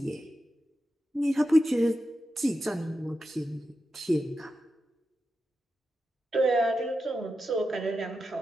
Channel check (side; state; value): both; normal; correlation 0.89